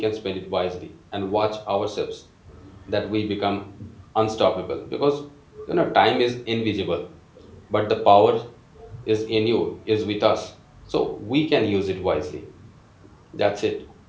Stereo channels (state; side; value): identical; both; correlation 1.00